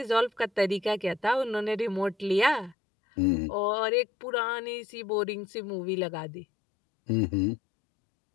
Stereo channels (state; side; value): drops out; right; at 2.8 s